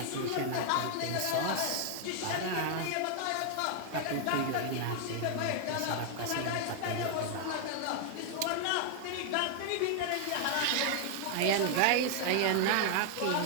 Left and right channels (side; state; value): both; different; correlation 0.00